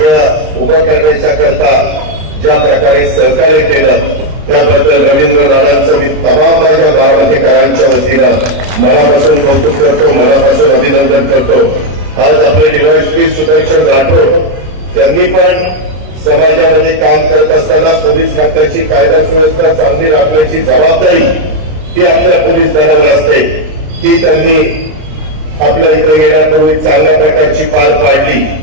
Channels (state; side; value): late; left; 32 ms